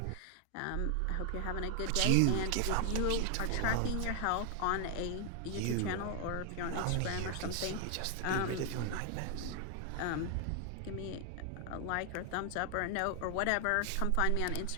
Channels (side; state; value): both; different; correlation 0.00